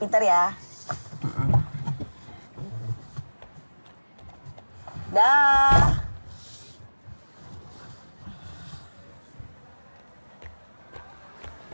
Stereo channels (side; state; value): both; inverted; correlation -1.00